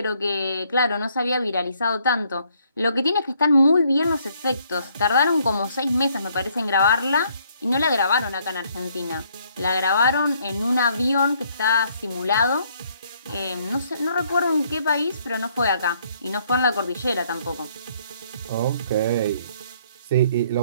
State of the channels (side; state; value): both; inverted; correlation -0.67